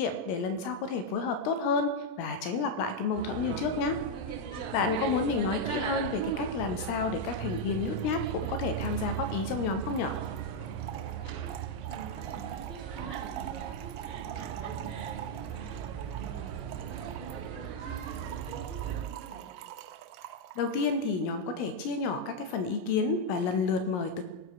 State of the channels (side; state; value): right; late; 17 ms